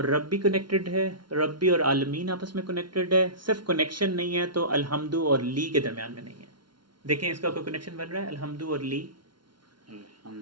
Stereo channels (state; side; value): late; left; 0.72 ms